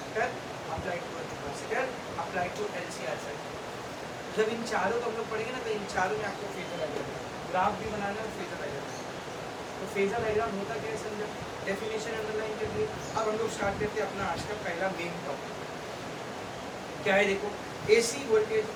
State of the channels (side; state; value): both; identical; correlation 1.00